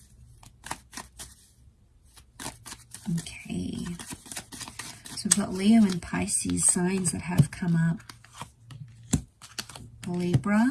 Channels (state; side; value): identical; both; correlation 1.00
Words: Okay, so we've got Leo and Pisces signs that have come up.